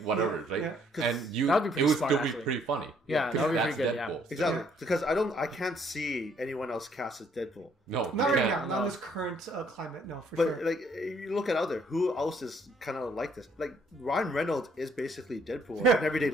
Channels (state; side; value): normal; both; correlation 0.65